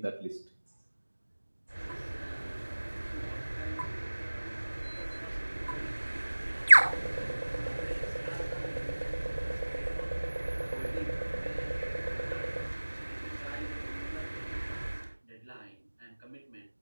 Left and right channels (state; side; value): inverted; both; correlation -1.00